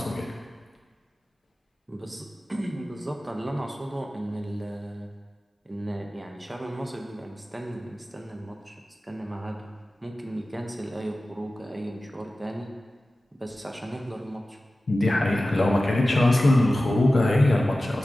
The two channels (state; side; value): normal; both; correlation 0.95